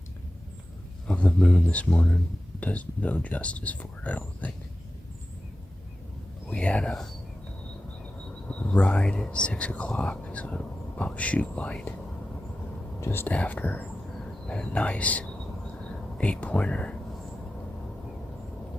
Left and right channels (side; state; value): both; normal; correlation 0.93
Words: of the moon this morning does no justice for it, I don't think. We had a ride at 6 o'clock, so about shoot light, just after, and a nice 8-pointer